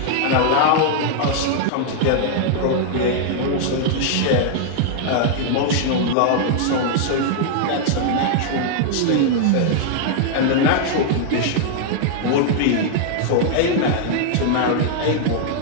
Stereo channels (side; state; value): both; different; correlation -0.01